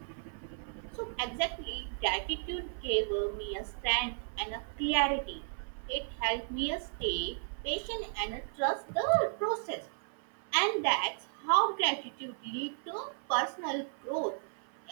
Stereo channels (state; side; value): silent; left; 55 dB below the other